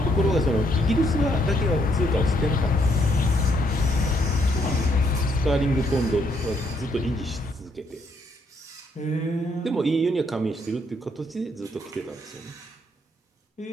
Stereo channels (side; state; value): both; normal; correlation 0.72